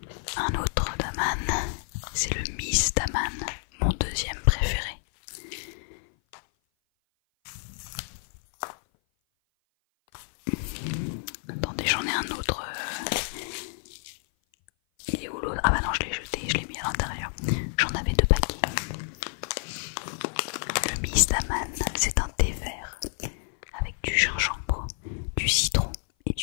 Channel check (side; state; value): right; silent; 56 dB below the other